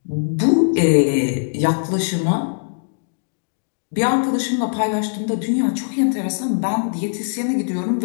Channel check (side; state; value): right; silent; digital silence